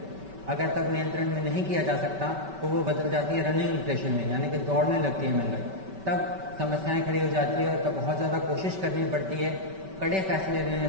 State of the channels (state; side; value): late; left; 5.2 ms